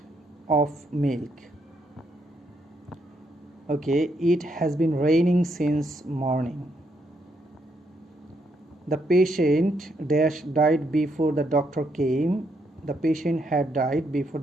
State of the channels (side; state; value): both; normal; correlation 0.76